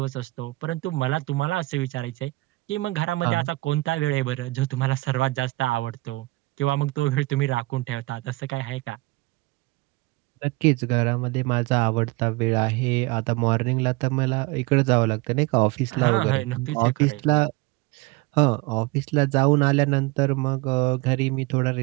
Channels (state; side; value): quieter; left; 21.7 dB